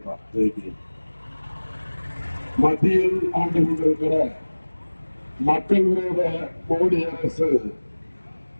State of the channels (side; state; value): both; inverted; correlation -1.00